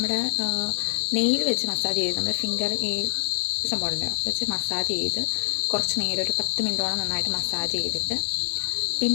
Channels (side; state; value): right; silent; digital silence